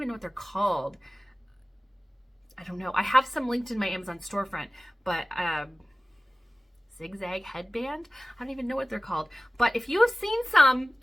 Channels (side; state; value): both; normal; correlation 0.96